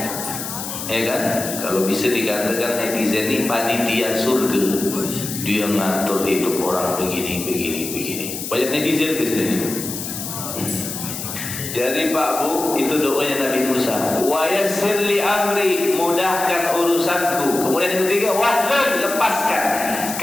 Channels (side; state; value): left; noise; hiss, 7 dB below the sound